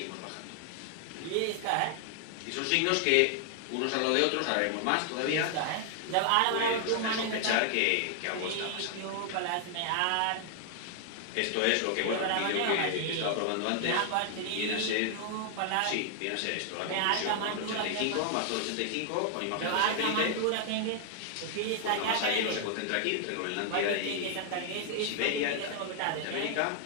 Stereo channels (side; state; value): both; different; correlation 0.00